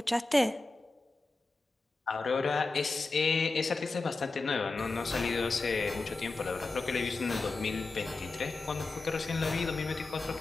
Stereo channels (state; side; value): quieter; right; 3.5 dB